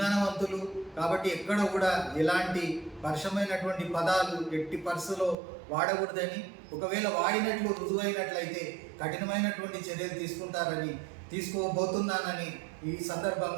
కాబట్టి ఎక్కడ కూడా ఎలాంటి పరుషమైనటువంటి పదాలు ఎట్టి పరిస్థితుల్లో వాడకూడదని, ఒకవేళ వాడినట్లు రుజువైనట్లయితే కఠినమైనటువంటి చర్యలు తీసుకోబోతున్నానని ఈ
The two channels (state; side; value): drops out; left; at 5.4 s